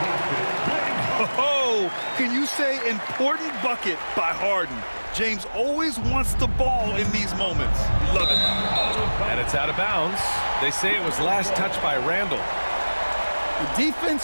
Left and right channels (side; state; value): both; inverted; correlation -1.00